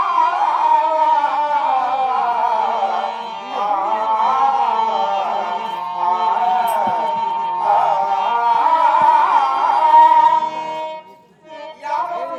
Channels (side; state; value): both; identical; correlation 1.00